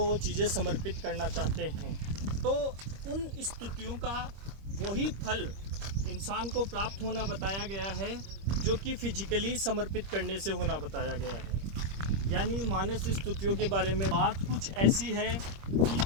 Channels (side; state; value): left; late; 25 ms